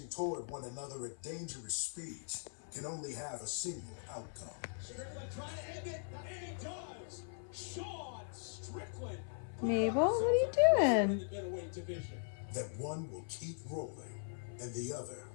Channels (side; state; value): right; silent; 51 dB below the other